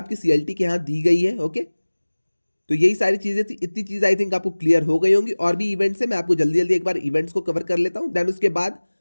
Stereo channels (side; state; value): both; inverted; correlation -1.00